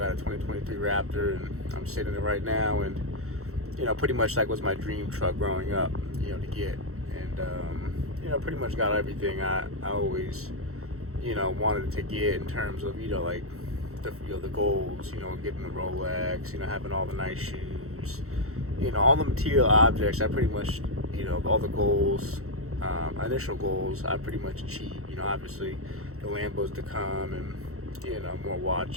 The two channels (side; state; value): left; late; 0.64 ms